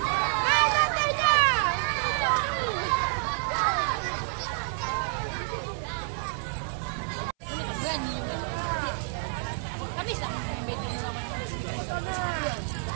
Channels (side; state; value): left; silent; 59 dB below the other